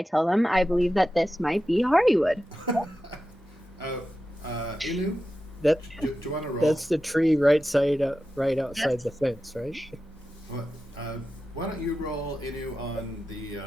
tell them I believe that this might be hardywood. Inu, That do you want to roll? that's the tree right outside the fence, right? What, why don't you roll Inu on the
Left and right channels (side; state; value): both; normal; correlation 0.92